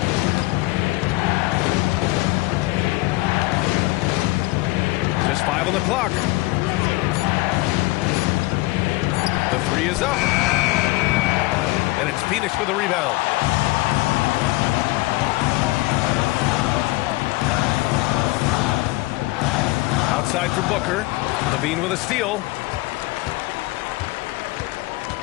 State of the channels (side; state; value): right; quieter; 21.4 dB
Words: Just 5 on the clock. The 3 is up. And it's Phoenix with a rebound. Outside for Booker. Levine with a steal.